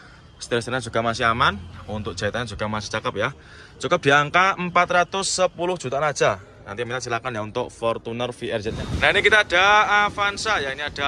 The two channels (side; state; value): both; identical; correlation 1.00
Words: Setir-setirnya juga masih aman, untuk jahitannya juga masih cakep ya. Cukup di angka 410 jutaan aja. Nanti minat silakan ya untuk Fortuner VRZ-nya. Nah ini kita ada Avanza ya, ini